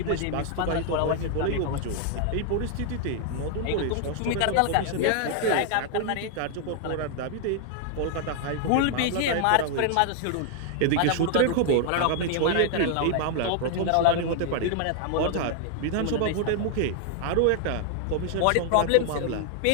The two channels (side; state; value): both; different; correlation 0.00